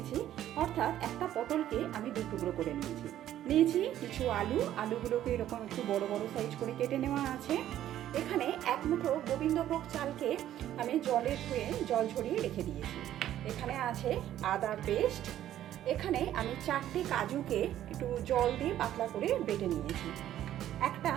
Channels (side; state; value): left; quieter; 12.1 dB